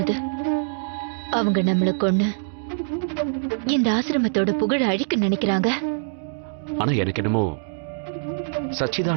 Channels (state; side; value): silent; left; digital silence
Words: அவங்க நம்மளை கொன்னு இந்த ஆசிரமத்தோட புகழ அழிக்க நினைக்கிறாங்க. ஆனா எனக்கு என்னமோ